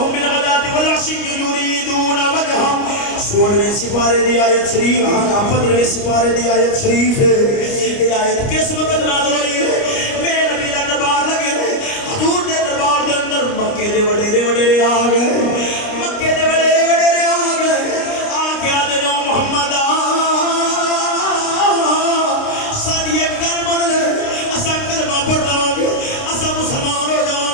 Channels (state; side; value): late; right; 29 ms